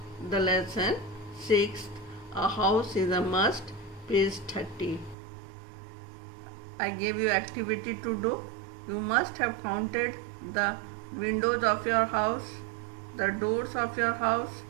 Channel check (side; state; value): left; drops out; at 5.2 s